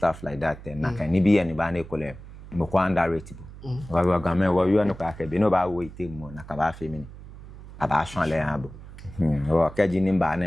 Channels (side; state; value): right; noise; hum, 16 dB below the sound